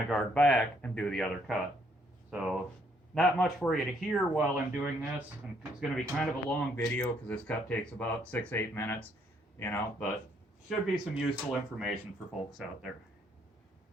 guard back and do the other cut. So not much for you to hear while I'm doing this. And it's going to be kind of a long video because this cut takes about 6-8 minutes, you know, but should be some useful information for folks out there.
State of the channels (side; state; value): both; normal; correlation 0.69